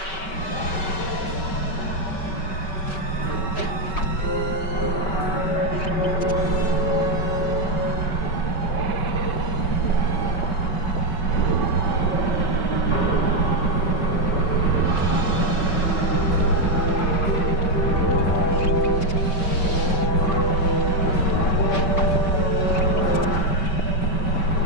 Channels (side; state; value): right; late; 5.2 ms